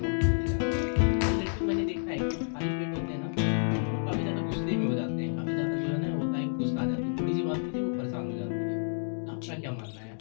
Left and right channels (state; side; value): silent; right; digital silence